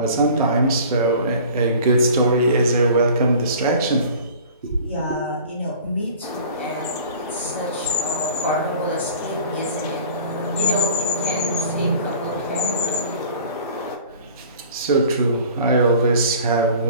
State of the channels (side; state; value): both; inverted; correlation -0.45